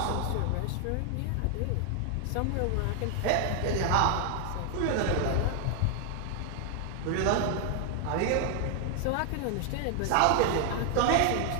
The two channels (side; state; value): both; different; correlation 0.00